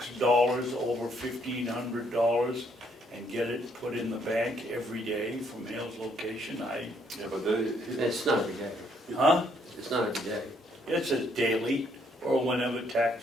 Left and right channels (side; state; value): both; normal; correlation 0.70